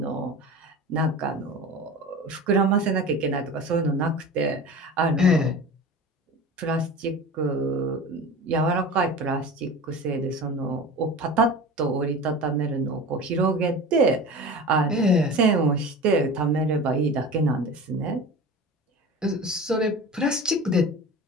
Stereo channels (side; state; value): both; normal; correlation 0.34